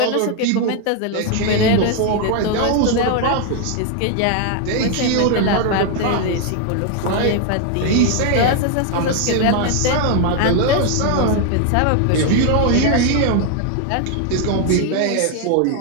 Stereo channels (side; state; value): both; different; correlation 0.01